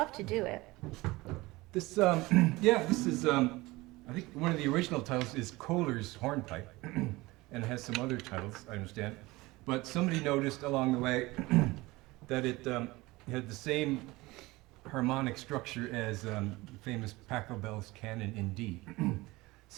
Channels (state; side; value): quieter; left; 21.0 dB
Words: to do it. This, this is, I think one of the original titles is Kohler's Hornpipe, and it has some other titles, I understand. But somebody noticed along the way that it had the same harmonic structure as the famous Pachelbel's canon in D.